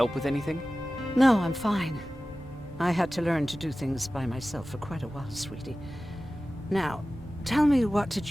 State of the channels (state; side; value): normal; both; correlation 0.96